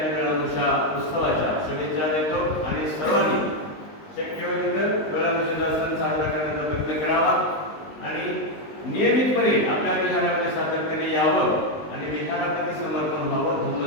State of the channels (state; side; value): late; right; 20 ms